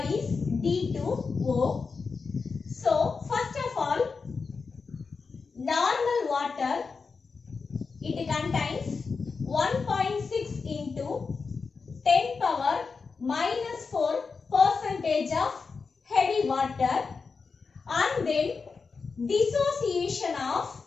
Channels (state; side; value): quieter; right; 4.9 dB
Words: is D2O. So, first of all, normal water, it contains 1.6 into 10 power minus 4 percentage of heavy water, and then dissociation of